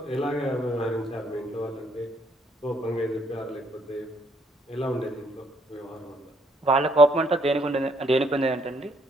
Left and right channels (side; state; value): both; normal; correlation 0.68